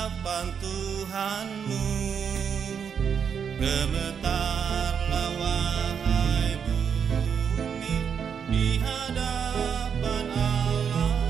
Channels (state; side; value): quieter; left; 7.2 dB